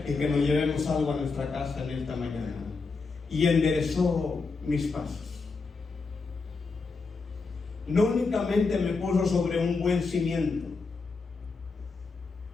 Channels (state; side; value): quieter; right; 4.3 dB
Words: y que nos llevemos algo a nuestra casa en esta mañana. Y enderezó mis pasos. No únicamente me puso sobre un buen cimiento,